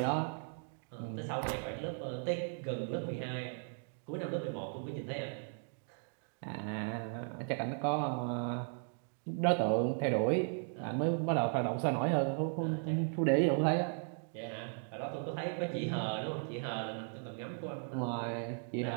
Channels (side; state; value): left; silent; 53 dB below the other